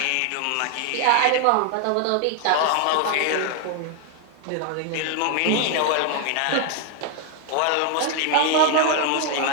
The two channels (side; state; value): both; different; correlation 0.00